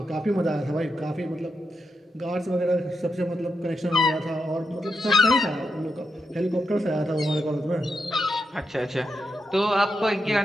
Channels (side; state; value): both; normal; correlation 0.85